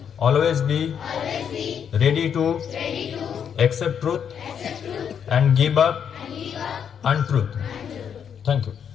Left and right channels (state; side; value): quieter; right; 7.9 dB